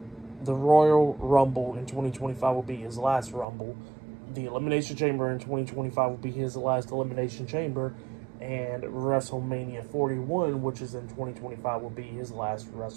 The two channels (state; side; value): drops out; left; at 3.5 s